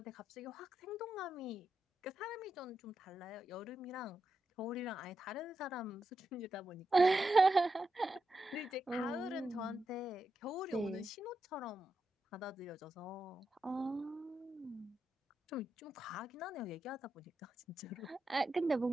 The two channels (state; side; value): normal; both; correlation 0.86